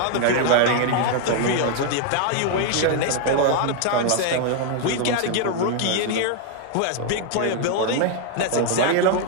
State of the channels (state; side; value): different; both; correlation 0.00